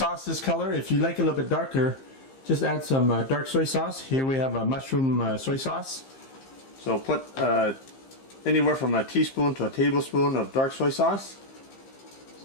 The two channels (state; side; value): late; right; 15 ms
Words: this color. If you like it a little bit darker, just add some dark soy sauce. Here we have a mushroom soy sauce. So put anywhere from a teaspoon to a tablespoon of dark soy sauce.